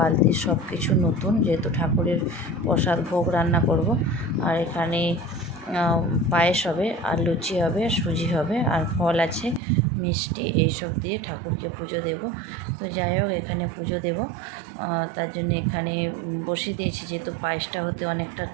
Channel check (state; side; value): drops out; left; at 9.6 s